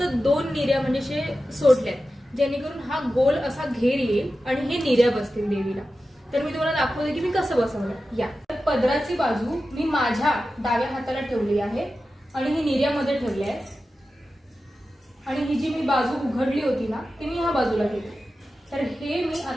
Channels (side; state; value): both; normal; correlation 0.93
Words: 2 निऱ्या म्हणजे सोडल्यात जेणेकरून हा गोल असा घेर येईल आणि हे निऱ्या बसतील देवीला. तर मी तुम्हाला दाखवते की मी कसं बसवलं. या पदराची बाजू मी माझ्या डाव्या हाताला ठेवली आहे आणि ही निऱ्यामध्ये ठेवली आहे आणि ही जी मी बाजू उघडली होती ना ती मी ह्या बाजूला घेतली. तर हे मी